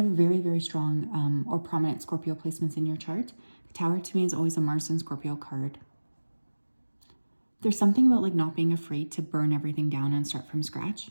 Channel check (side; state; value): both; inverted; correlation -1.00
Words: very, very strong or prominent Scorpio placements in your chart. The Tower to me is always a Mars and Scorpio card. There's something about like not being afraid to burn everything down and start from scratch.